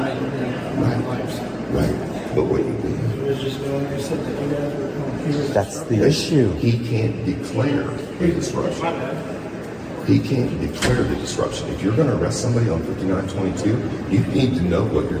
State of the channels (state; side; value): identical; both; correlation 1.00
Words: Right. But what you do, That's the issue. he can't declare a disruption. He can't declare the disruption. If you're going to arrest somebody on 5922, you need to know